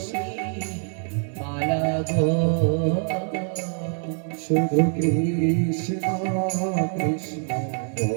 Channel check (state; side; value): silent; left; 55 dB below the other